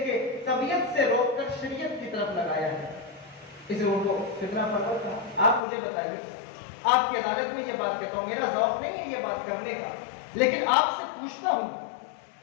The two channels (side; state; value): right; drops out; at 5.6 s